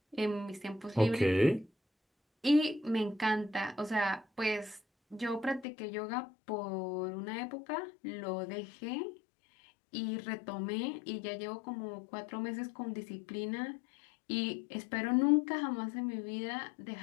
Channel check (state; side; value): drops out; right; at 5.7 s